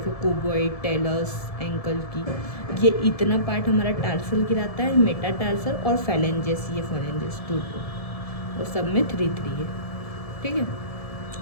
क्यूबॉइड, टेलस, एंकल की, ये इतना पार्ट हमारा टार्सल गिराता है, मेटाटार्सल और फेलेंजेस, ये फेलेंजेस 2 और सब में 3 है, ठीक है।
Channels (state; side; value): late; right; 1.7 ms